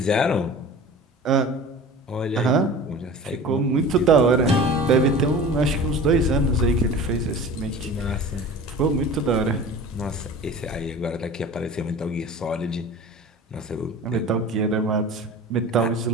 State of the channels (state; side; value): normal; both; correlation 0.38